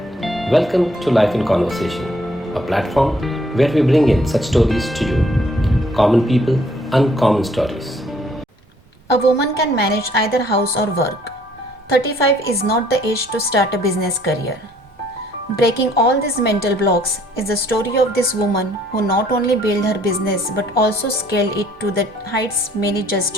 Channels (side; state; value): both; normal; correlation 0.63